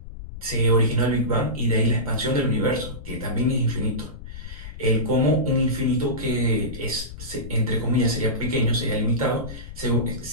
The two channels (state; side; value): noise; left; rumble, 12 dB below the sound